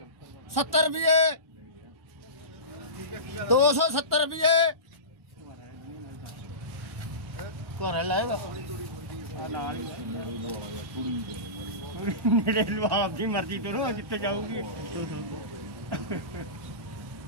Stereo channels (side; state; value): left; late; 1.1 ms